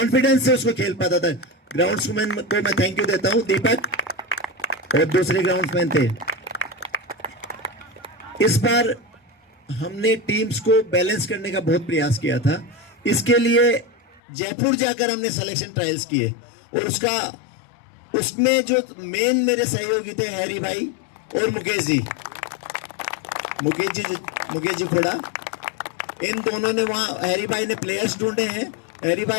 से उसको खेल पाता था। ग्राउंड्समैन को मैं थैंक यू देता हूं, दीपक और दूसरे ग्राउंड्समैन थे। इस बार हमने टीम्स को बैलेंस करने का बहुत प्रयास किया था। इसके लिए जयपुर जाकर हमने सिलेक्शन ट्रायल्स किए और उसमें जो मेन मेरे सहयोगी थे हैरी भाई और मुकेश जी खोड़ा, इन दोनों ने वहां, हैरी भाई ने प्लेयर्स ढूंढे हैं। हैरी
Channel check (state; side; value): drops out; right; at 14.2 s